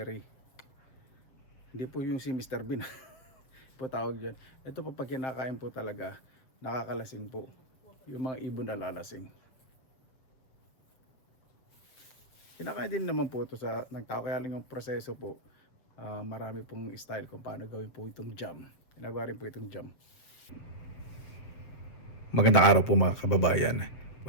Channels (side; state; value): right; late; 7.6 ms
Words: Hindi po yung si Mr. Bean. Po tawag dyan. Ito po pag kinakain po talaga, nakakalasing po. Yung mga ibon na lalasing. Kinakain din naman po ito sa nagtao, kaya lang yung proseso po. Marami pong style kung paano gawin po itong jam. Ginagawa rin po itong jam. Magandang araw po mga kababayan.